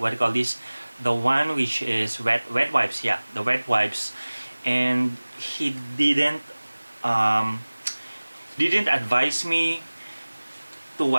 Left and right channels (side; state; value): both; inverted; correlation -1.00